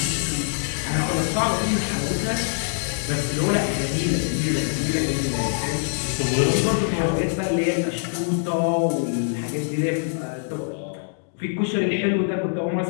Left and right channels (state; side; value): silent; right; digital silence